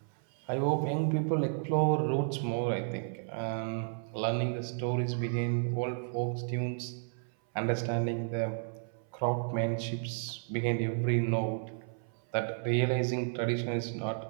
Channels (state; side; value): silent; left; 56 dB below the other